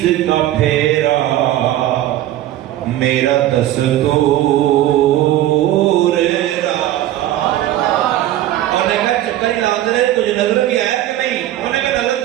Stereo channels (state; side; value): quieter; left; 13.5 dB